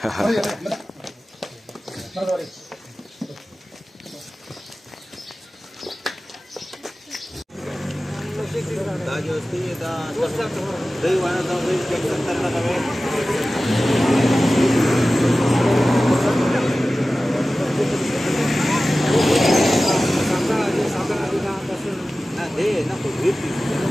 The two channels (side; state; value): both; normal; correlation 0.96